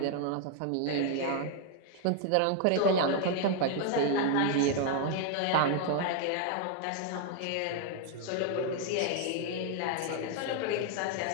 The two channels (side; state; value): both; different; correlation 0.00